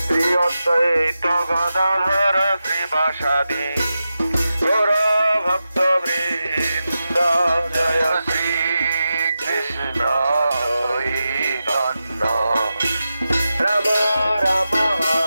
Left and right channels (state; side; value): inverted; both; correlation -0.91